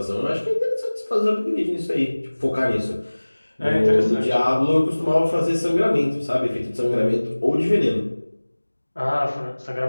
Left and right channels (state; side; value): inverted; both; correlation -1.00